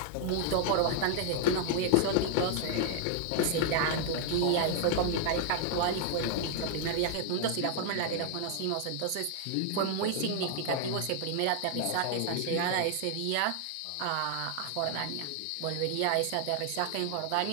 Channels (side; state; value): both; different; correlation 0.00